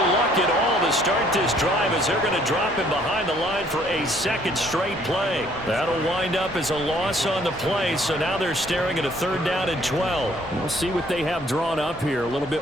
luck at all to start this drive as they're going to drop him behind the line for a second straight play. That'll wind up as a loss on the play, so now they're staring at a third down and 12. We'll see what they have drawn up here. A little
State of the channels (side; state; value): both; normal; correlation 0.62